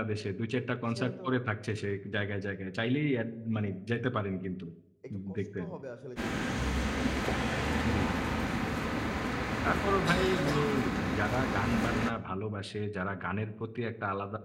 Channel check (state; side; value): identical; both; correlation 1.00